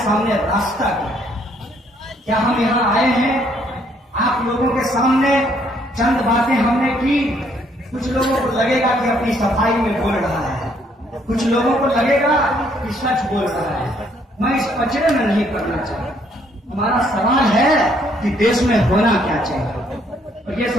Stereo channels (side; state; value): both; normal; correlation 0.67